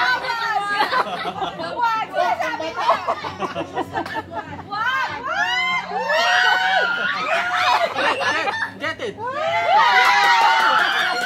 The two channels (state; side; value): identical; both; correlation 1.00